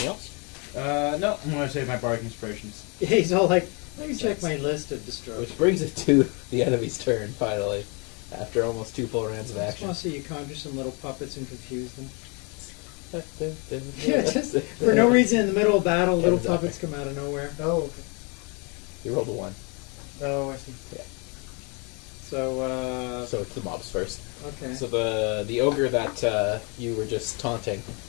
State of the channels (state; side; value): quieter; right; 32.9 dB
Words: else? No, I'm going to save my Bardic Inspirations. He's all like, let me check my list of destroy. Which brings it to the enemy's turn, finally. After almost 2 full rounds of I just action. want to see you conjure some little puppets and confuse them. Yeah, Yeah, just for no reason in the middle of battle, little Exactly. puppets come out of nowhere. Oh, okay. You rolled a 1. Oh, I see. Yeah. So, So it's the mobs first. okay. So the ogre that you were just taunting